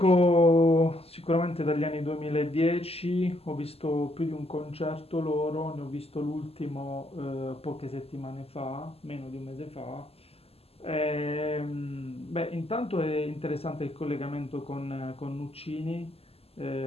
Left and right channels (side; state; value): right; late; 0.29 ms